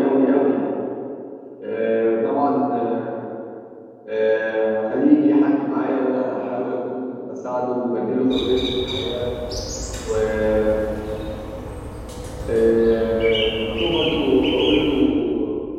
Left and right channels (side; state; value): both; identical; correlation 1.00